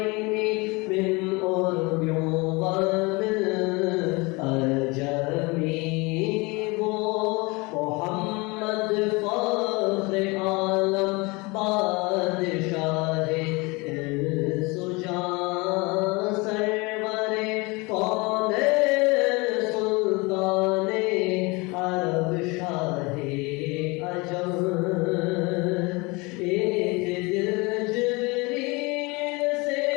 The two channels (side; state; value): right; quieter; 26.0 dB